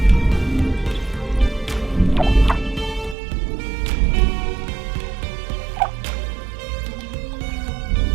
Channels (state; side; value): drops out; left; at 3.2 s